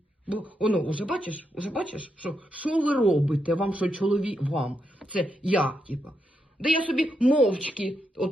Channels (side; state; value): both; normal; correlation 0.83